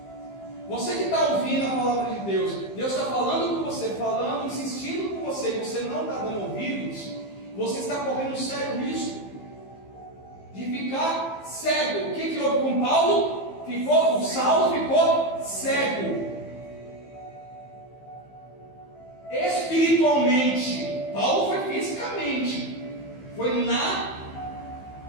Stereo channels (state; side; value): late; right; 15 ms